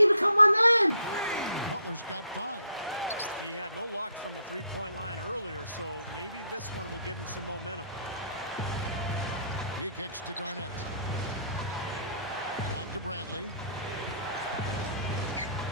become my man? Butler's got 5. He had no luck from the three-point line earlier, so maybe this one will give him some momentum. He kicks to Garnett. Back to Bradley.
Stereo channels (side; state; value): both; inverted; correlation -0.65